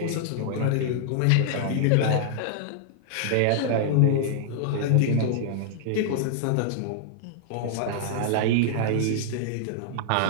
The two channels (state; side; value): different; both; correlation -0.01